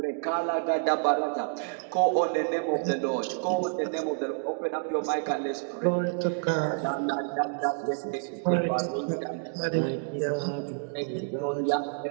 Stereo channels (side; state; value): left; silent; digital silence